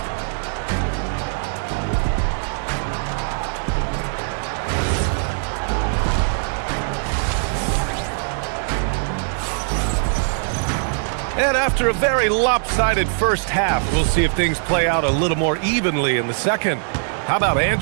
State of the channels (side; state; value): left; silent; digital silence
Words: And after a very lopsided first half, we'll see if things play out a little more evenly in the second. How about